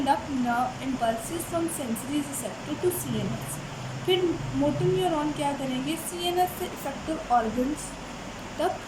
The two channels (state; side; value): identical; both; correlation 1.00